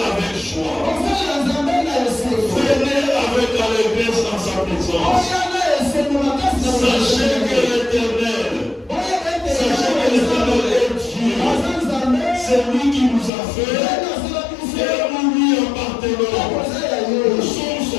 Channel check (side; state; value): right; drops out; at 13.3 s